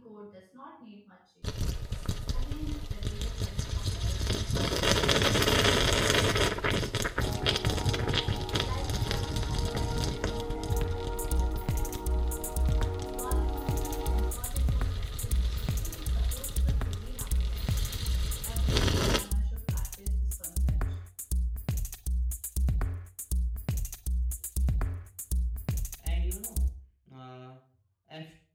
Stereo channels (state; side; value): identical; both; correlation 1.00